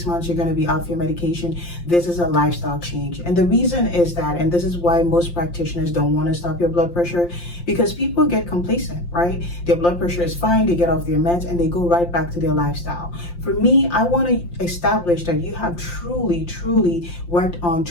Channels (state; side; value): late; right; 5.7 ms